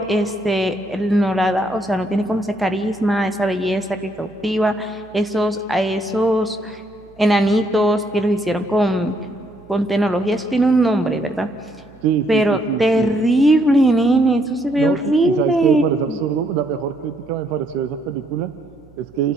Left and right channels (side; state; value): right; noise; hum, 27 dB below the sound